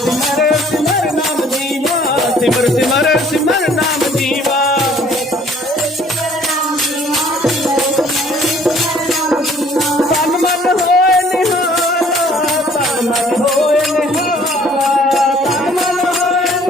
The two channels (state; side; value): normal; both; correlation 0.57